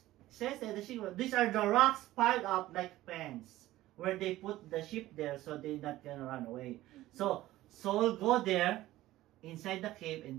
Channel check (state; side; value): quieter; left; 16.0 dB